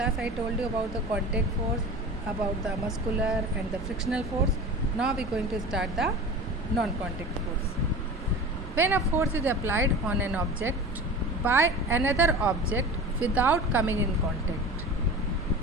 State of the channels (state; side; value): normal; both; correlation 0.34